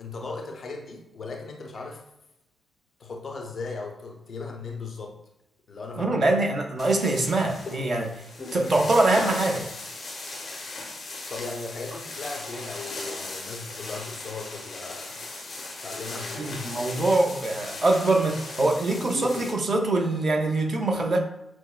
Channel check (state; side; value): normal; both; correlation 0.84